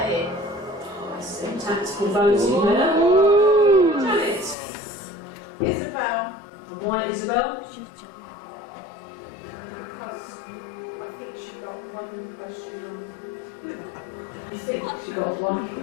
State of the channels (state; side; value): drops out; right; at 4.5 s